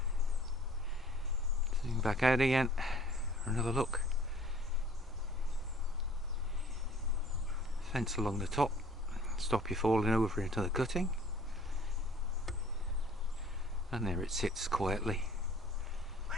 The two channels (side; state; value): both; normal; correlation 0.53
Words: Zoom back out again for another look. Fence along the top, stop you falling over into the cutting. And there it sits quietly.